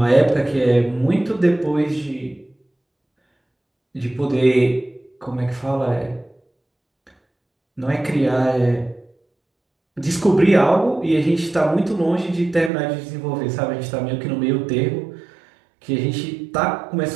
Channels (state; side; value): drops out; left; at 12.7 s